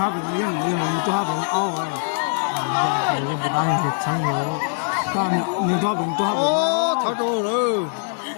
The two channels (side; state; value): right; silent; 64 dB below the other